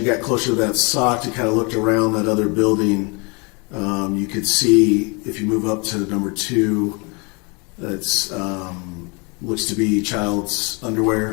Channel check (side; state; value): right; quieter; 31.2 dB